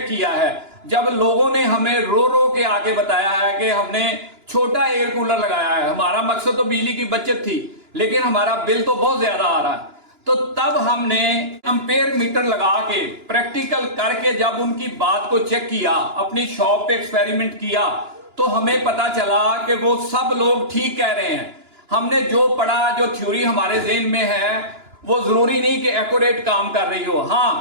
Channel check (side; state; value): left; late; 2.9 ms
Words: किया है, जब लोगों ने हमें रो रो के आके बताया है कि हमने छोटा एयर कूलर लगाया है, हमारा मकसद तो बिजली की बचत थी, लेकिन हमारा बिल तो बहुत ज्यादा आ रहा है, तो तब हमने एम्पेयर मीटर लगा के प्रैक्टिकल करके जब उनकी बात को चेक किया, अपनी शॉप पे एक्सपेरिमेंट किया, तो हमें पता चला कि वो सब लोग ठीक कह रहे हैं। हमने जो पढ़ा, जो थ्योरी हमारे ज़हन में है, वो जरूरी नहीं कि एक्यूरेट काम कर रही हो।